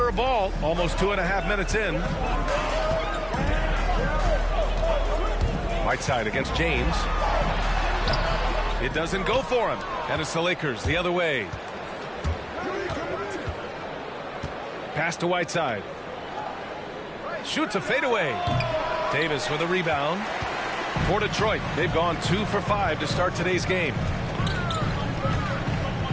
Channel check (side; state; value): both; identical; correlation 1.00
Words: of ball, almost 2.5 minutes in. Whiteside against James. It doesn't go for him. And it's the Lakers the other way. Pass to Whiteside. Shoots a fadeaway. Davis with a rebound. For Detroit, they've gone 2 for 5 to start today's game.